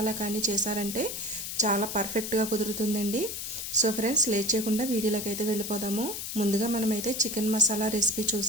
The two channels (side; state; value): left; noise; hiss, 5 dB below the sound